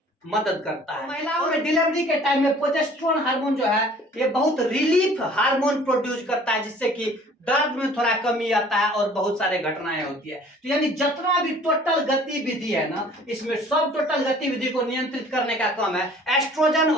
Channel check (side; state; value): both; normal; correlation 0.52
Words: मदद करता है। महिलाओं में डिलीवरी के टाइम में प्रोजेस्टेरोन हार्मोन जो है ये बहुत रिलीफ हार्मोन प्रोड्यूस करता है, जिससे कि दर्द में थोड़ा कमी आता है और बहुत सारे घटनाएं होती है। तो यानी जितना भी टोटल गतिविधि है ना, इसमें सब टोटल गतिविधि को नियंत्रित करने का काम है एस्ट्रोजन